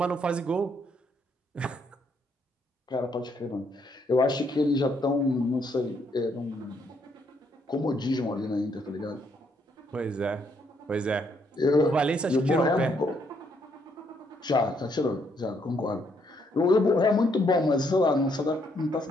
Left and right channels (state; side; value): normal; both; correlation 0.72